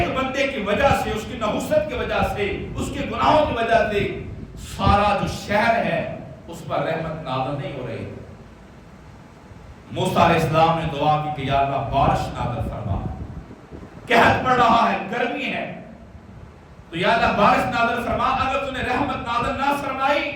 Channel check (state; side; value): identical; both; correlation 1.00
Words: بندے کی وجہ سے، اس کی نحوست کی وجہ سے، اس کے گناہوں کی وجہ سے سارا جو شہر ہے اس پر رحمت نازل نہیں ہو رہی۔ موسیٰ علیہ السلام نے دعا کی کہ یا اللہ بارش نازل فرما، قحط پڑ رہا ہے، گرمی ہے، تو یا اللہ بارش نازل فرما، اگر تو نے رحمت نازل نہ فرمائی